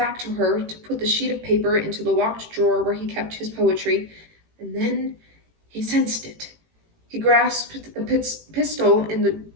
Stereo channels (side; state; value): left; late; 18 ms